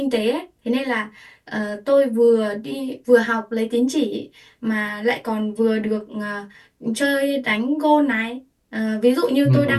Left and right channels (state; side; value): identical; both; correlation 1.00